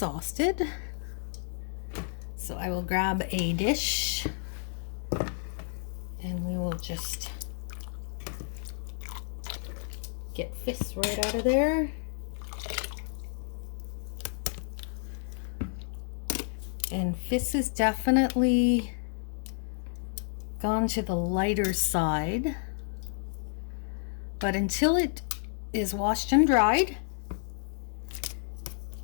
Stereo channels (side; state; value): right; silent; digital silence